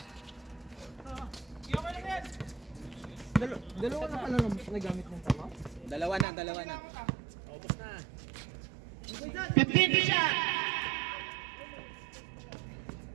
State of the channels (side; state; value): left; drops out; at 6.2 s